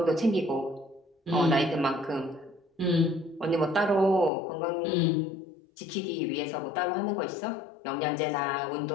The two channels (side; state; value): right; drops out; at 4.3 s